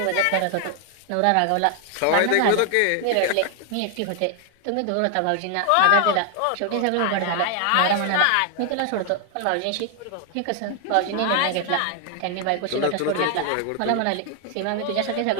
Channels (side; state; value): both; different; correlation 0.00